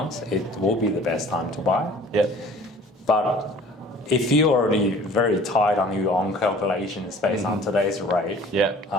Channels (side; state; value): both; normal; correlation 0.49